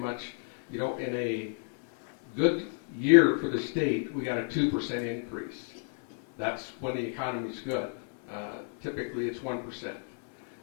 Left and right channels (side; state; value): right; silent; 57 dB below the other